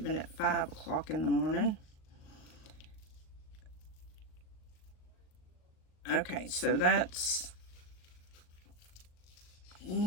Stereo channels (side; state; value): right; late; 38 ms